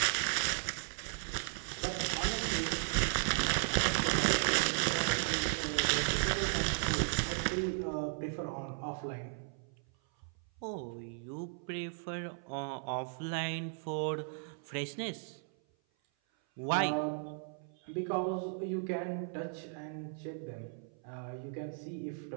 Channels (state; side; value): silent; left; 54 dB below the other